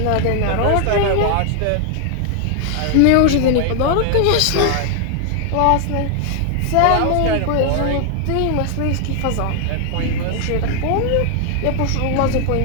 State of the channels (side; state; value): both; different; correlation 0.00